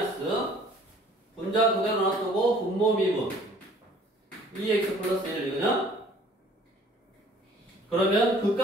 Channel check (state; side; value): normal; both; correlation 0.54